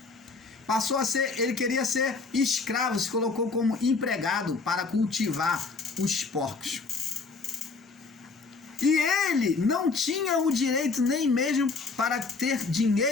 Passou a ser, ele queria ser escravo, se colocou como empregado para cultivar os porcos. E ele não tinha o direito nem mesmo para ter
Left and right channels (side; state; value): right; quieter; 4.3 dB